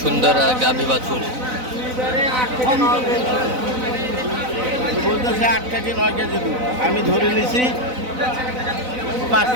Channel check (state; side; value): late; left; 4.0 ms